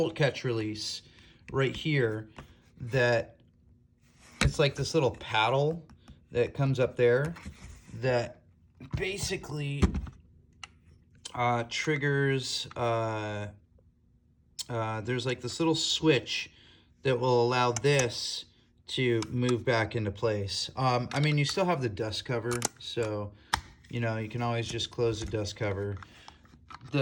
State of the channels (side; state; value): both; identical; correlation 1.00